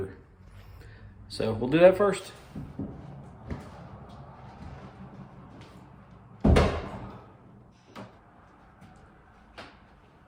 So we'll do that first.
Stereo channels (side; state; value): both; identical; correlation 1.00